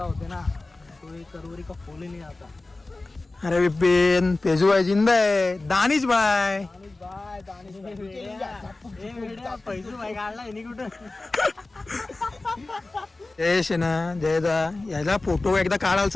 होते ना तो एक करोरी का फूल ही नहीं आता. अरे विपिन, पेजू भाई जिंदा है. दानिश भाई, फैजू भाई काढला आहे कुठं. यश आहे ना जयदा, याला फोटो एकदा काढायला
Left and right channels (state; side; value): quieter; right; 3.1 dB